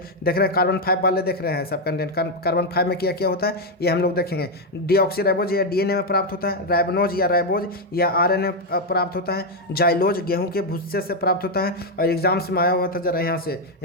देख रहे हैं, कार्बन 5 वाले देख रहे हैं सब कंटेंट, कार्बन 5 में क्या क्या होता है ये हम लोग देखेंगे। डीऑक्सीराइबोज यह डीएनए में प्राप्त होता है। राइबोज या राइबोज या आरएनए प्राप्त होता है। जाइलोज गेहूं के भुस्से से प्राप्त होता है। और एग्जाम्स में आया हुआ था जरा यहाँ से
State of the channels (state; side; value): normal; both; correlation 0.03